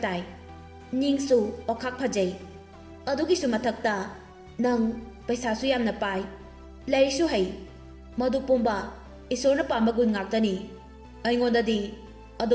Ningsu okak phajai. Adugi su mathakta nang paisa su yam na pai. Lai su hai. Madu pumba isor na pamagun ngaktani. Aingonda di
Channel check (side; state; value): both; identical; correlation 1.00